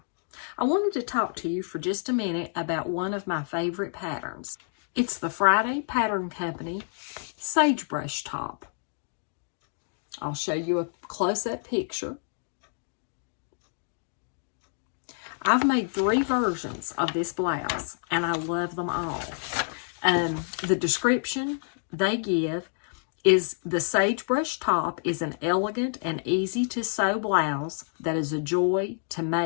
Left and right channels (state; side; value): silent; right; digital silence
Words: I wanted to talk to you for just a minute about one of my favorite patterns. It's the Friday Pattern Company Sagebrush top. I'll show you a close-up picture. I've made 3 versions of this blouse and I love them all. The description they give is the Sagebrush top is an elegant and easy to sew blouse that is a joy to